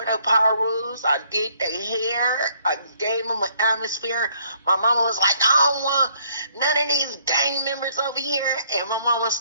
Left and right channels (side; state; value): both; inverted; correlation -0.66